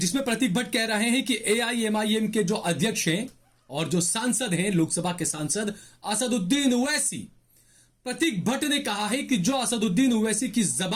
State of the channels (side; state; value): both; identical; correlation 1.00